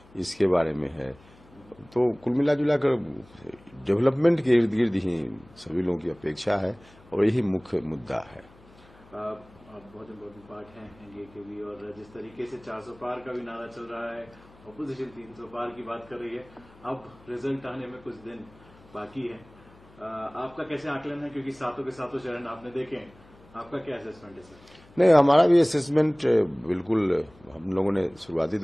इसके बारे में है। तो कुल मिला जुला कर डेवलपमेंट के इर्द गिर्द ही सभी लोगों की अपेक्षा है और यही मुख्य मुद्दा है। बहुत इम्पोर्टेंट पार्ट है एनडीए के भी, और जिस तरीके से 400 पार का भी नारा चल रहा है, अपोजिशन 300 पार की बात कर रही है, अब रिजल्ट आने में कुछ दिन बाकी है। आपका कैसे आकलन है, क्योंकि सातों के सातों चरण आपने देखे, आपका क्या असेसमेंट है सर? नहीं, हमारा भी असेसमेंट बिल्कुल, हम लोगों ने शुरुआती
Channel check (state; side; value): noise; left; hum, 25 dB below the sound